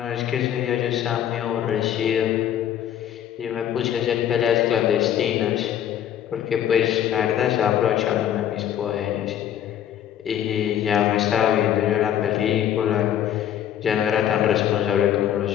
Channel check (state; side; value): quieter; right; 10.4 dB